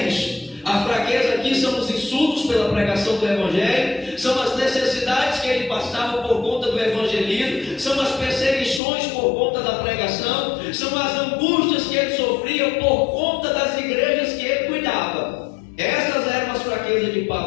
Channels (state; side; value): drops out; right; at 8.8 s